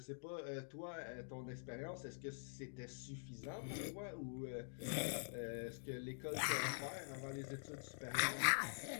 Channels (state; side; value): silent; right; digital silence